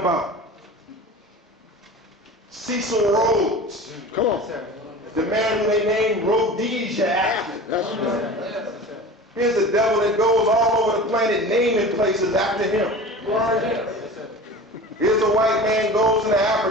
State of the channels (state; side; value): normal; both; correlation 0.36